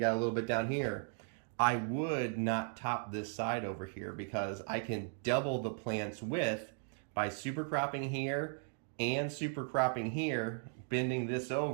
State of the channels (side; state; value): left; silent; 53 dB below the other